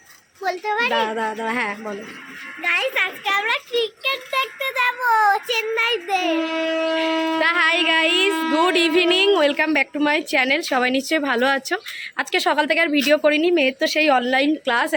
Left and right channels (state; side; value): identical; both; correlation 1.00